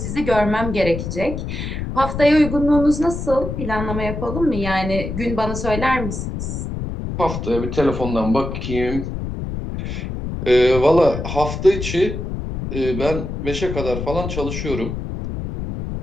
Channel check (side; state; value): left; noise; rumble, 5 dB below the sound